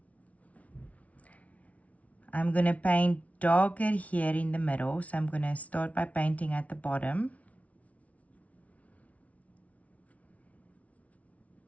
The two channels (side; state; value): right; late; 0.067 ms